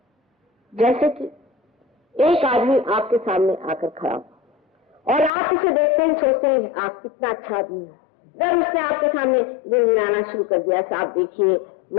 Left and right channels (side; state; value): right; drops out; at 5.3 s